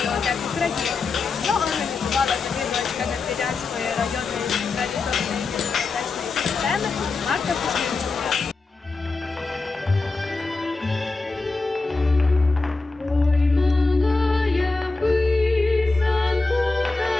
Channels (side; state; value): right; quieter; 3.8 dB